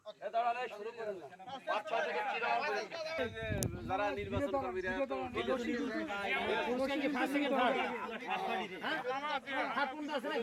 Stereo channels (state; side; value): identical; both; correlation 1.00